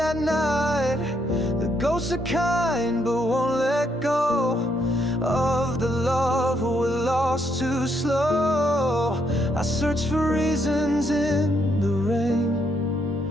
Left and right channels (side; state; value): both; normal; correlation 0.74